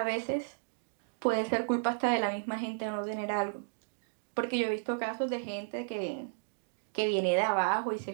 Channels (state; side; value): quieter; left; 39.5 dB